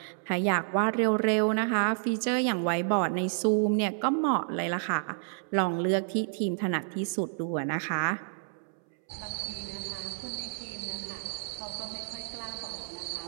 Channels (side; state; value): left; silent; 58 dB below the other